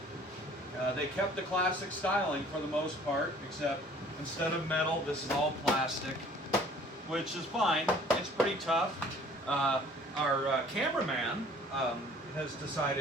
They kept the classic styling for the most part, except instead of metal, this is all plastic, which is fine. It's pretty tough. Our cameraman has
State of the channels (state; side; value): normal; both; correlation 0.53